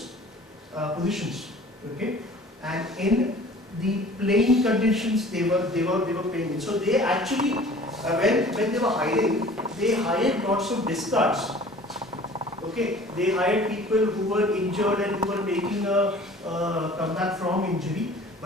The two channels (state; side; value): normal; both; correlation 0.47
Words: positions. Okay, and in the playing conditions they were playing in. So they actually, when they were hiring, they hired lots of discards. Okay, they hired people who were injured and who were making a comeback from injury,